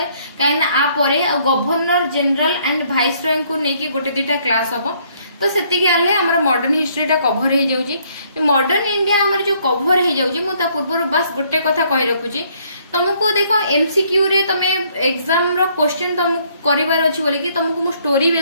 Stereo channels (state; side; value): inverted; both; correlation -0.66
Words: काइना आ परे आ governor general and viceroy को नेकी गोटे दिटा क्लास हबो। तो सेतिकी आले हमर मॉडर्न हिस्ट्री टा कवर हे जाउची। मॉडर्न इंडिया हमर जो कवर हे जाउची मु ता पूर्व बस गोटे कथा कहि रखुची तुमको देखो एमसीक्यू रे तमे एग्जाम रो क्वेश्चन तुम करिवार अछि बोली कि तुमको मु स्टोरी